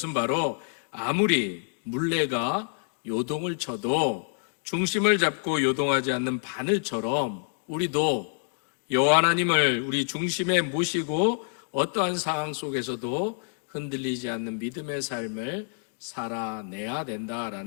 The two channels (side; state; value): right; silent; 59 dB below the other